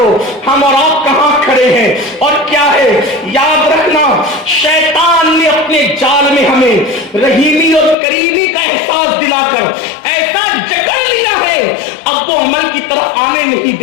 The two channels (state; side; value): drops out; right; at 8.0 s